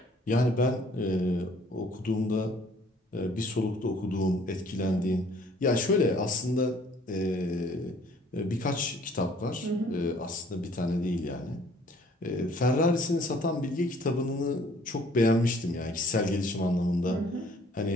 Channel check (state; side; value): normal; both; correlation 0.58